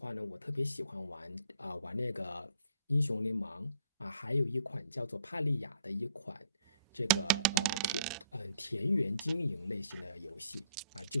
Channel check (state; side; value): inverted; both; correlation -0.61